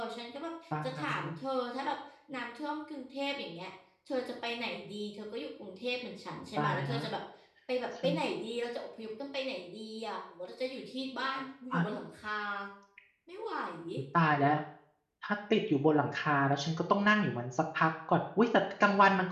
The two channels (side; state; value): both; identical; correlation 1.00